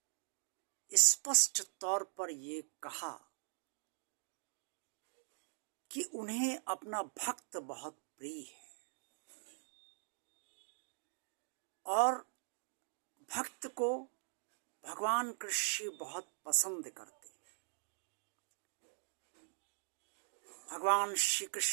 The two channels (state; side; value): silent; left; digital silence